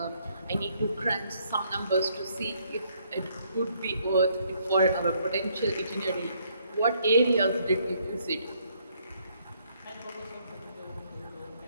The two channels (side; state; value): both; inverted; correlation -0.68